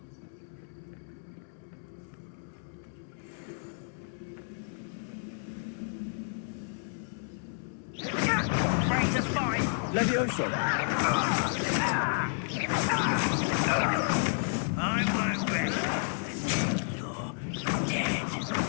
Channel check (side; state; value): right; silent; 57 dB below the other